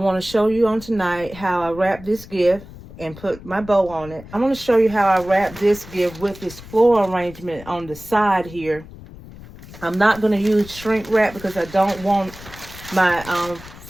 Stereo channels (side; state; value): left; noise; rumble, 17 dB below the sound